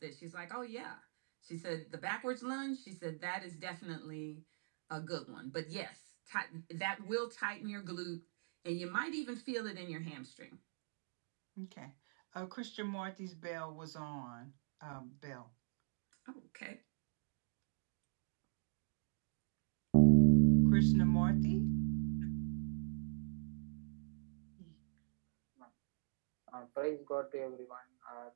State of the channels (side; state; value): left; silent; digital silence